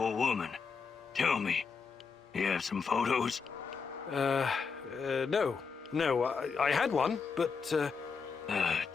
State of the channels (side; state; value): right; quieter; 5.5 dB